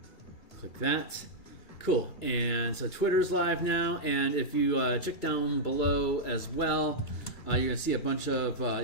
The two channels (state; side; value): late; right; 2.3 ms